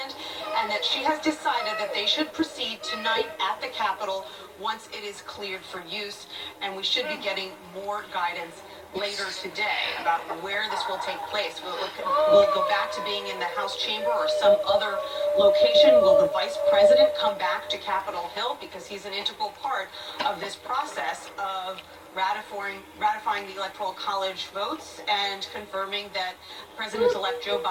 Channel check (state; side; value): identical; both; correlation 1.00